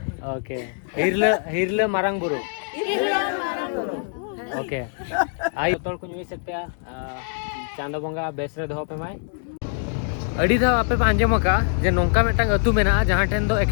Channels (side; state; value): right; silent; 57 dB below the other